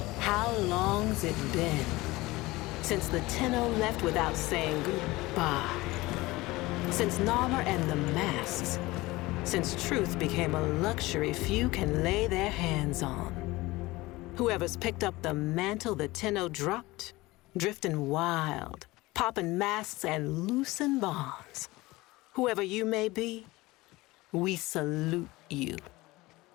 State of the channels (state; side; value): quieter; right; 20.3 dB